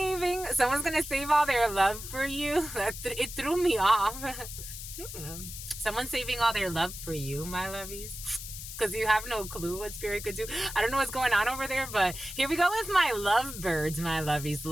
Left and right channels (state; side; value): noise; left; hiss, 10 dB below the sound